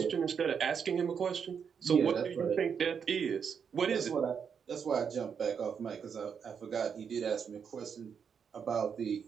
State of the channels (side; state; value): left; quieter; 6.9 dB